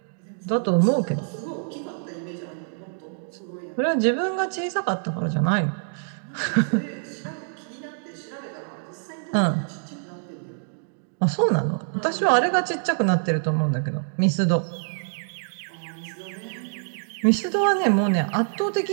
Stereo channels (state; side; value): silent; left; digital silence